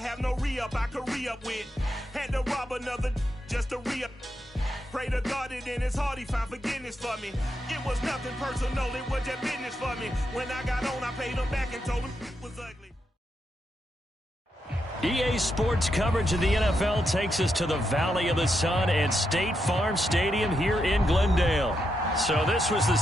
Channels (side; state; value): both; normal; correlation 0.83